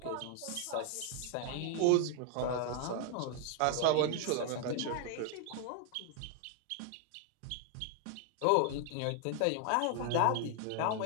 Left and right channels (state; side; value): different; both; correlation 0.00